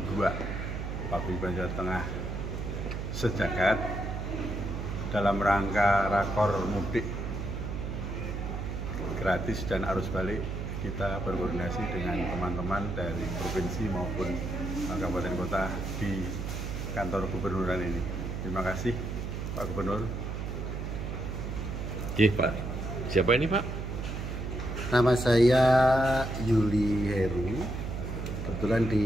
2 Paguyuban Jawa Tengah Sejagat dalam rangka rakor mudik gratis dan arus balik. Kita berkoordinasi dengan teman-teman dari provinsi maupun kabupaten kota di kantor gubernuran ini. Terima kasih Pak Gubernur. Oke Pak, siapa ini Pak? Nama saya Yuli Heru. Kebetulan di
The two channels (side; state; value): right; noise; hum, 4 dB below the sound